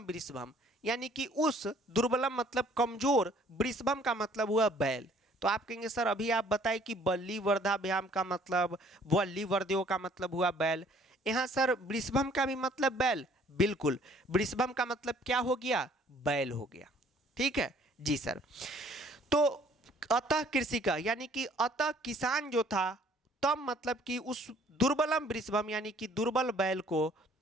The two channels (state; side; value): normal; both; correlation 0.58